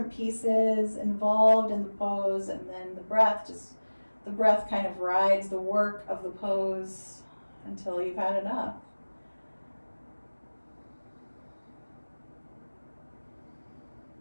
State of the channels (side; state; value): both; inverted; correlation -1.00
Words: pieces involved in the pose, and then the breath kind of rides the work of the pose until you've had enough.